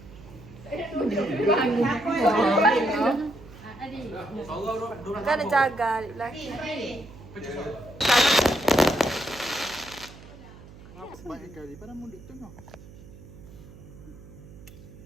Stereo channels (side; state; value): right; noise; hum, 18 dB below the sound